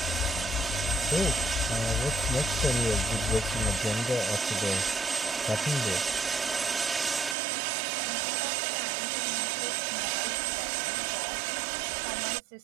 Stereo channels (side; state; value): left; drops out; at 7.4 s